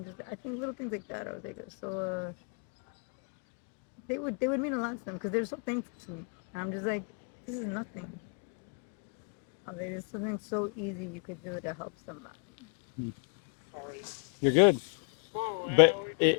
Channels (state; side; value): quieter; right; 38.8 dB